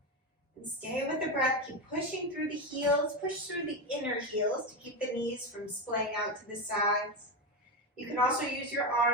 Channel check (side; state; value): both; normal; correlation 0.14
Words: And stay with the breath, keep pushing through the heels, push through the inner heels to keep the knees from splaying out to the sides. You can also use your